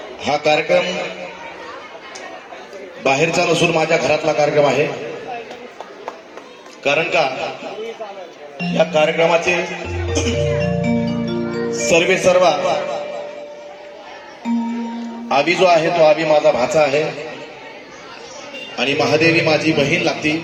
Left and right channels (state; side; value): identical; both; correlation 1.00